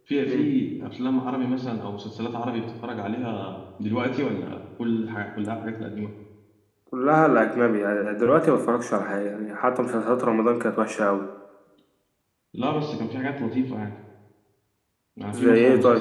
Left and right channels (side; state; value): both; identical; correlation 1.00